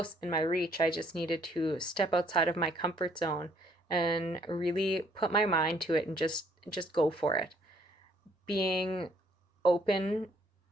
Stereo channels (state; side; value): normal; both; correlation 0.65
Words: in my reach. I just needed to step outside of my comfort zone and really put my mind to it and just go for it. Being open